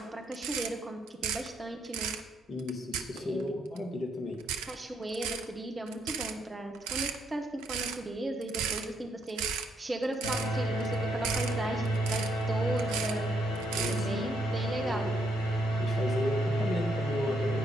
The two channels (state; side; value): normal; both; correlation 0.74